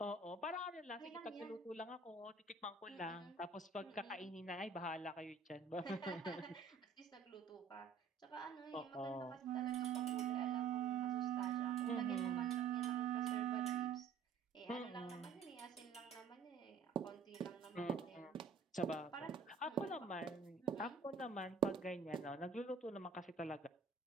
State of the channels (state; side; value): quieter; left; 5.3 dB